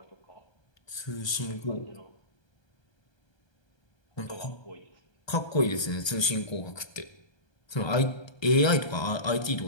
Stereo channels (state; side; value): late; right; 1.3 ms